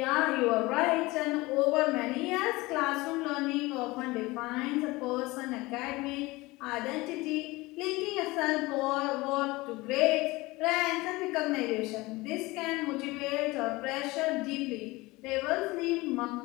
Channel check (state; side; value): quieter; right; 21.6 dB